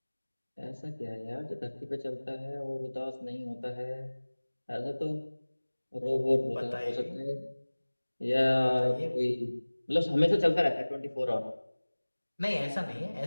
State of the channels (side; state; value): both; inverted; correlation -1.00